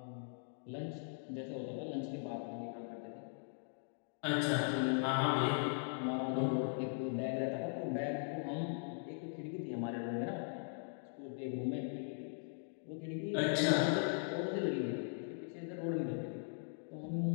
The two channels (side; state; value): right; silent; digital silence